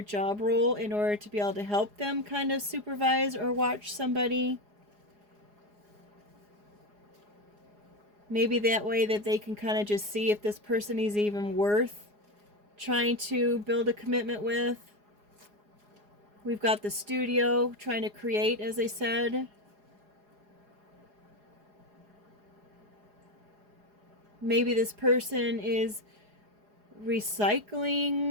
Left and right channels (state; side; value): late; left; 4.8 ms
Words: job role in order to be able to help them kind of supervise or watch somebody. Maybe that way that they can kind of just see if this person is even worth trying to build a commitment with. We've got the studio trying to create, as I said. Maybe this person is